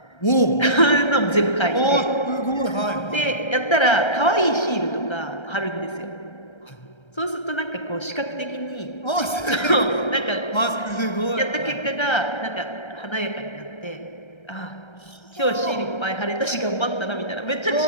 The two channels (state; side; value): late; right; 1.3 ms